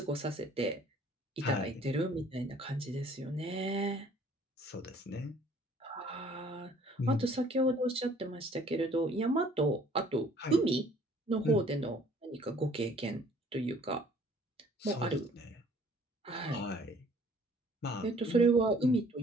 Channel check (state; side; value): normal; both; correlation 0.57